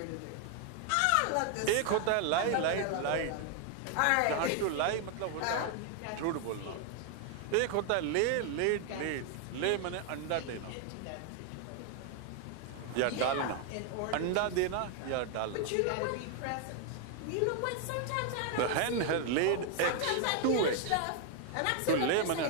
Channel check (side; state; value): both; different; correlation 0.00